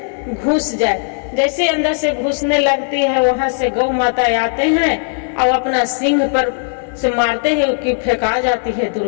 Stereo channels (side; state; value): right; silent; 68 dB below the other